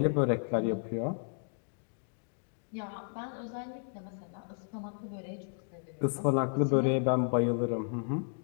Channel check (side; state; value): right; silent; 56 dB below the other